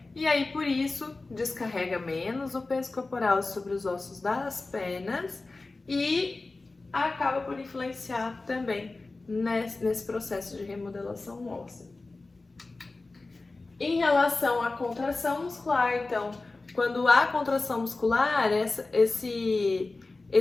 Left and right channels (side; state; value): right; quieter; 3.4 dB